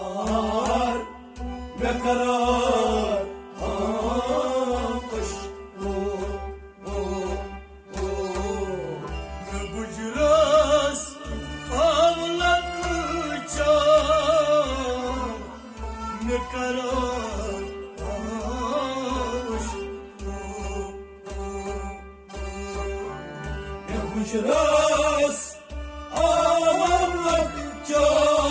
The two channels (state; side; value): identical; both; correlation 1.00